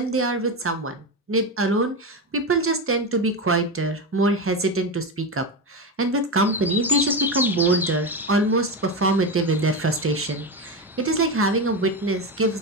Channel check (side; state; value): both; normal; correlation 0.16